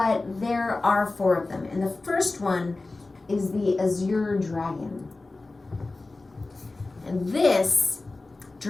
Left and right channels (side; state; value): right; quieter; 3.3 dB